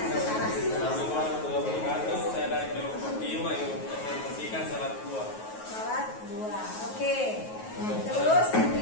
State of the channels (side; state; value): right; late; 9.3 ms